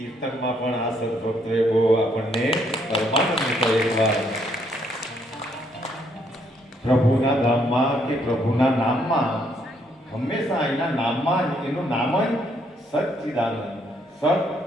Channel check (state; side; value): normal; both; correlation 0.71